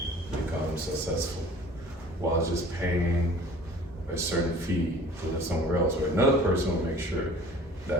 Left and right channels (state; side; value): normal; both; correlation 0.47